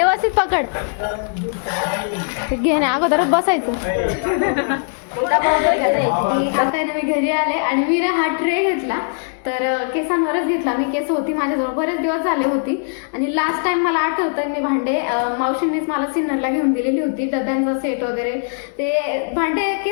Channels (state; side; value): silent; right; 66 dB below the other